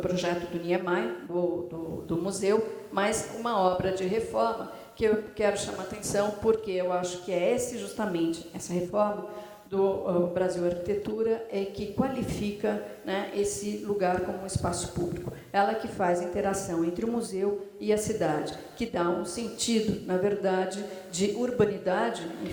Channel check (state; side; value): identical; both; correlation 1.00